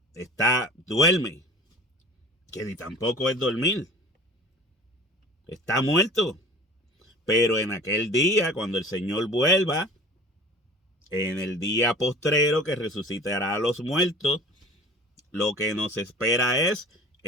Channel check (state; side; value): normal; both; correlation 0.42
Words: Duerme, que ni tampoco es dormir. Está muerto. Pero en aquel día, cuando el Señor vuelva, en el día postrero que resucitará a los muertos, lo que nos espera es